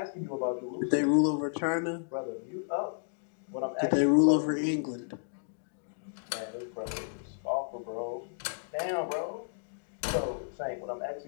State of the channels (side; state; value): right; silent; digital silence